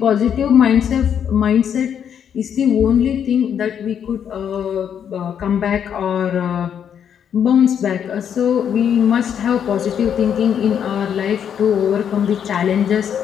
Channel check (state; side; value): quieter; right; 8.5 dB